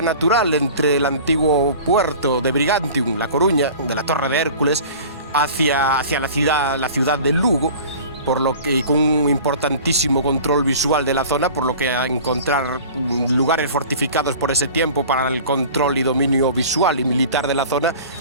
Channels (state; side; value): inverted; both; correlation -0.41